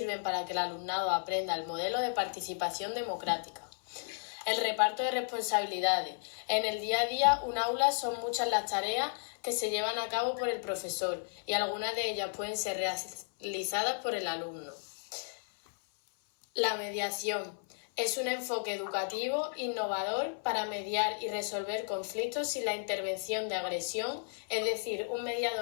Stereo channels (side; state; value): right; silent; 55 dB below the other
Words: para que el alumnado aprenda el modelo de participación democrática. El reparto de responsabilidades. En el día a día, un aula son muchas las tareas que se llevan a cabo por el profesor y algunas de ellas pueden ser realizadas por el alumno. La mediación. Es un enfoque educativo innovador para mediar y resolver conflictos sin la intervención de agresión, es decir, un